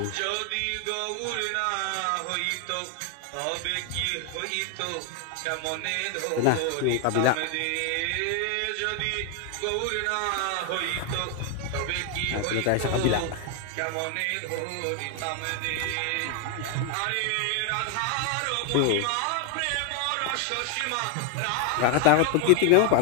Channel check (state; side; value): different; both; correlation 0.00